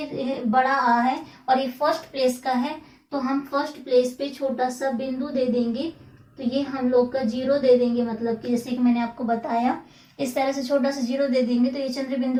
बड़ा आ है और ये फर्स्ट प्लेस का है, तो हम फर्स्ट प्लेस पे छोटा सा बिंदु दे देंगे, तो ये हम लोग का जीरो दे देंगे, मतलब कि जैसे कि मैंने आपको बताया, इस तरह से छोटा सा जीरो दे देंगे, तो ये चंद्र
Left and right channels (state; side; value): identical; both; correlation 1.00